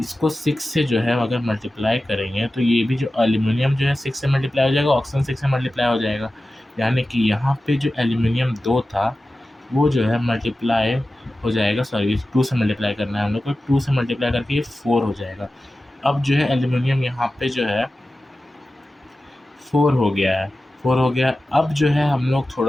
6 से जो है अगर मल्टीप्लाई करेंगे तो ये भी जो एल्यूमीनियम जो है 6 से मल्टीप्लाई हो जाएगा, ऑक्सीजन 6 से मल्टीप्लाई हो जाएगा। यानी कि यहाँ पे जो एल्यूमीनियम 2 था वो जो है मल्टीप्लाई हो जाएगा, सॉरी 2 से मल्टीप्लाई करना है हम लोग को, 2 से मल्टीप्लाई करके ये 4 हो जाएगा। अब जो है एल्यूमीनियम यहाँ पे जो है 4 हो गया है, 4 हो गया। अब जो है हम लोग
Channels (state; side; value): normal; both; correlation 0.95